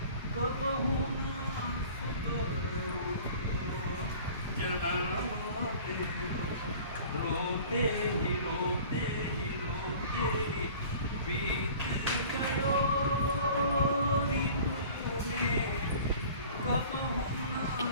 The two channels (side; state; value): both; inverted; correlation -0.45